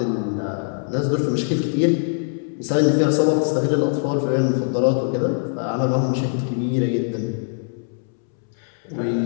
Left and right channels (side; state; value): right; silent; 64 dB below the other